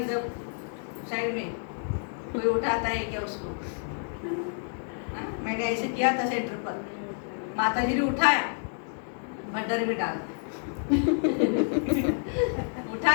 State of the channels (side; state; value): right; silent; 59 dB below the other